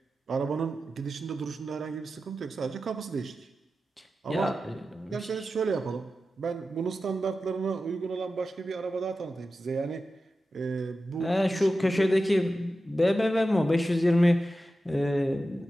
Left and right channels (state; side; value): normal; both; correlation 0.92